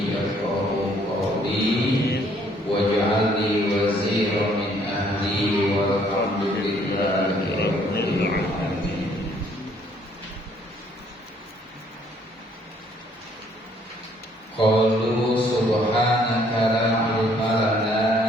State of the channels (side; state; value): both; normal; correlation 0.64